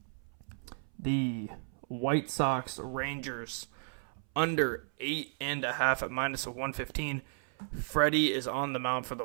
the White Sox-Rangers under 8.5 at -115. Freddie is on the mound for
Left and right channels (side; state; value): left; silent; 55 dB below the other